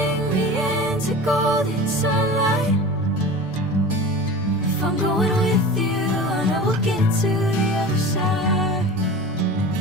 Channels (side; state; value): both; normal; correlation 0.35